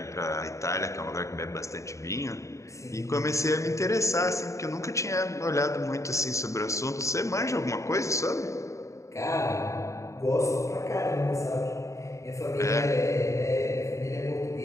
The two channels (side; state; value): right; late; 0.15 ms